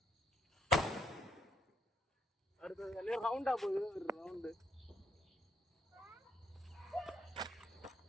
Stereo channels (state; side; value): normal; both; correlation 0.73